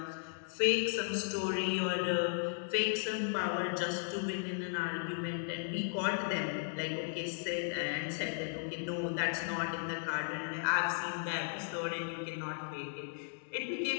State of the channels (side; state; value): right; silent; digital silence